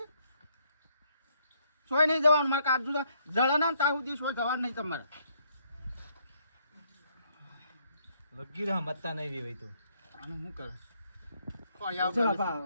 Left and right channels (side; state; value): both; inverted; correlation -0.69